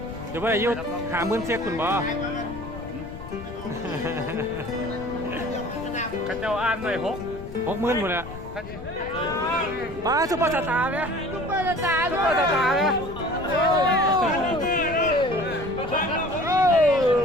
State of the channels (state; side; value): noise; left; rumble, 13 dB below the sound